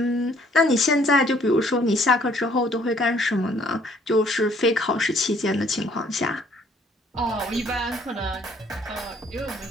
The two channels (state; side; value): normal; both; correlation 0.61